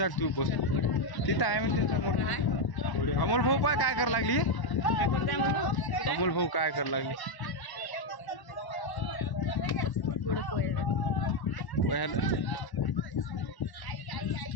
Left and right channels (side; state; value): right; late; 1.1 ms